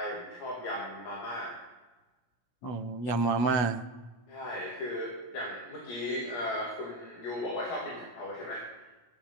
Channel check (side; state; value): right; late; 16 ms